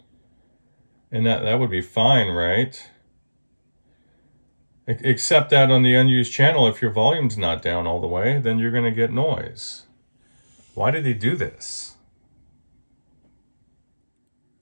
And that would be fine, right? Except that on the unused channel, if your volume's not down all the way, then you're going to get noise. Why did he do this?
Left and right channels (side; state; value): both; inverted; correlation -1.00